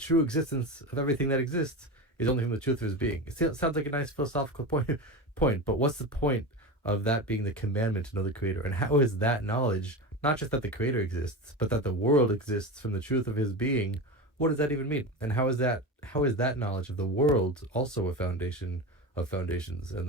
existence of everything that exists is only from the truth of His being. It sounds like a nice philosophical point, but what's the point of that being the commandment to know the Creator? And how is that knowledge, not just that the Creator exists, but that the world exists from the truth of His being? What does that even mean? And how is that knowledge of the world also a foundation of foundations and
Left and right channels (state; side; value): normal; both; correlation 0.24